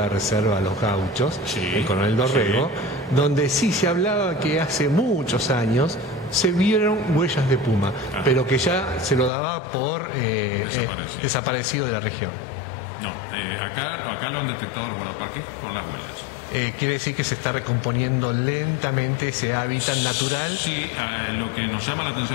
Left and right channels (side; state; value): right; drops out; at 9.3 s